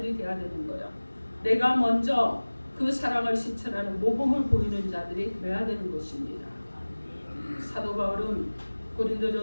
돼야 되는 거예요. 내가 먼저 그 사랑을 실천하는 모범을 보이는 자들이 돼야 되는 것입니다. 사도 바울은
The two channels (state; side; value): inverted; both; correlation -1.00